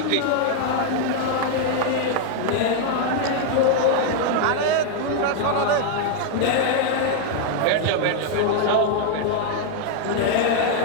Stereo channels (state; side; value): different; both; correlation 0.00